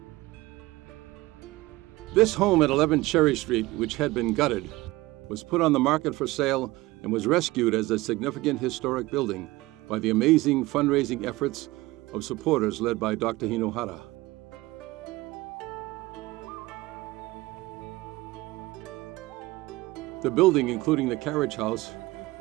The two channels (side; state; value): left; quieter; 19.8 dB